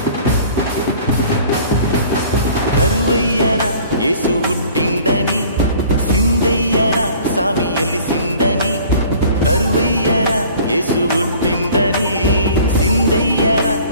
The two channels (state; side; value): inverted; both; correlation -0.50